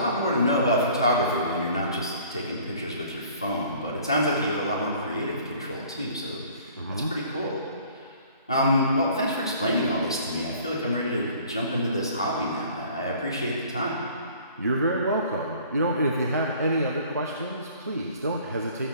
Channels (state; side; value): inverted; both; correlation -0.52